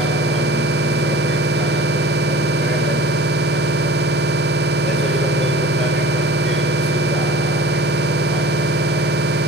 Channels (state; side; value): normal; both; correlation 0.42